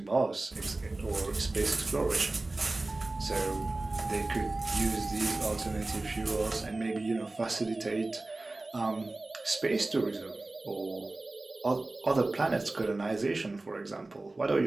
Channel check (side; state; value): left; quieter; 3.0 dB